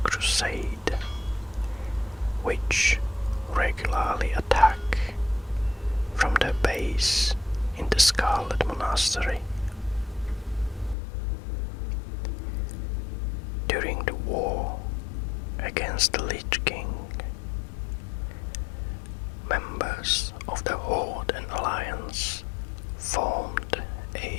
Crusade, which regularly attack from their base in the Scarlet Monastery. During the war against the Lich King, members of the Horde and Alliance formed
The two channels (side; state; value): right; drops out; at 11.0 s